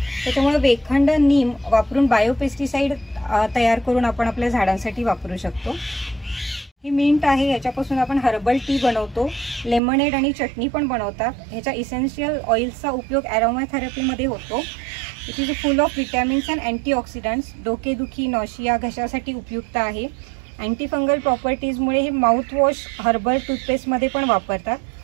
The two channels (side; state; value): left; drops out; at 9.8 s